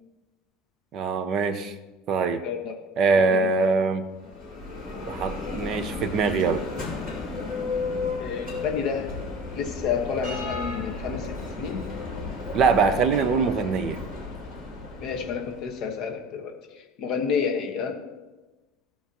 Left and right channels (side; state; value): both; normal; correlation 0.41